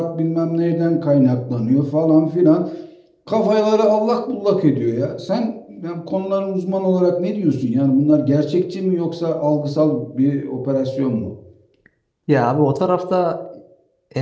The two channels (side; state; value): both; identical; correlation 1.00